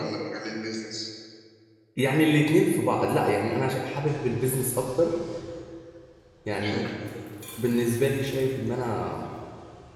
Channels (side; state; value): both; identical; correlation 1.00